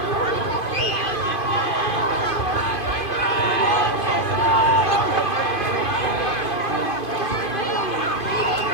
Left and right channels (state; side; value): late; right; 2.5 ms